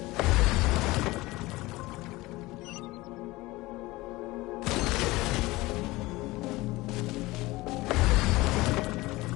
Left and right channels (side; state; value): right; quieter; 20.3 dB